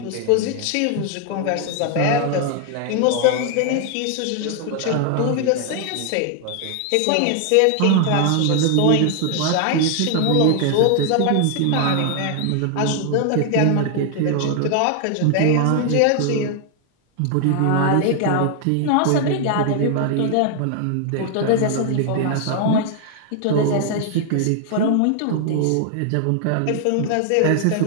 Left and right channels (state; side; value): different; both; correlation 0.00